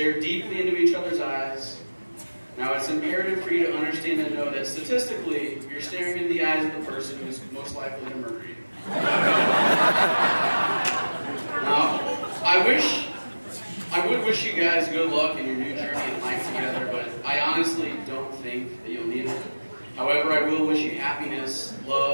deeply into each other's eyes. Now, it's imperative for you to understand and know that statistically, you're staring into the eyes of the person who's most likely to murder you. Now, I would wish you guys good luck in your new journey in life together, but I honestly don't think that you'll need it. However, I will wish you happiness,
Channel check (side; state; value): both; inverted; correlation -1.00